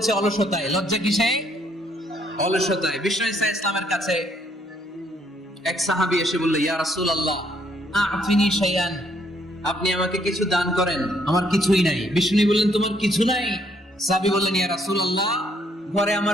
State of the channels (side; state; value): both; normal; correlation 0.68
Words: অলসতায়। লজ্জা কিসে? অলসতায়। বিষ্ণু ঈসা ইসলামের কাছে এক সাহাবী এসে বলল, ইয়া রাসূলুল্লাহ আ'তিনি শাইআন, আপনি আমাকে কিছু দান করেন, আমার কিছুই নাই। বিষ্ণু বললেন, তোমার কিছু নাই? সাহাবী বললেন, ইয়া রাসূলুল্লাহ ঘরে